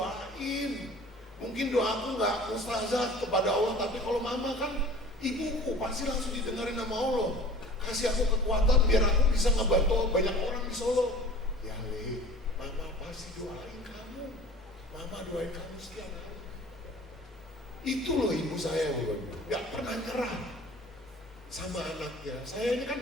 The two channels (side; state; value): both; normal; correlation 0.44